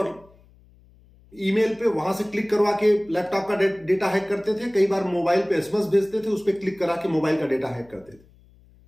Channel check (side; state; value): left; noise; hum, 28 dB below the sound